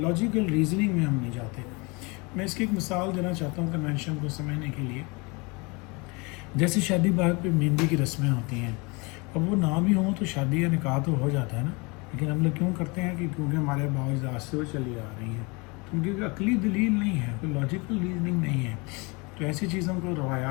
रीजनिंग में हम नहीं जाते। मैं इसकी एक मिसाल देना चाहता हूँ कन्वेंशन को समझने के लिए। जैसे शादी ब्याह पे मेहंदी की रस्में होती हैं, अब वो ना भी हों तो शादी या निकाह तो हो जाता है ना, लेकिन हम लोग क्यों करते हैं कि क्योंकि हमारे बाज़ से वो चली आ रही हैं, तो उनकी अकली दलील नहीं है, कोई लॉजिकल रीजनिंग नहीं है। तो ऐसी चीज़ों को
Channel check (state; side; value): quieter; right; 28.2 dB